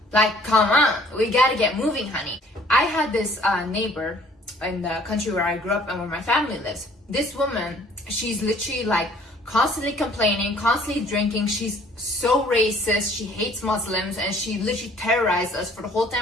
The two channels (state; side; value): normal; both; correlation 0.56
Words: like, come on, we gotta get moving, honey. I had this neighbor in the country where I grew up and where my family lives. This woman, she's literally like constantly complaining, constantly drinking. She's so racist, she hates Muslims, and she literally terrorized us for the whole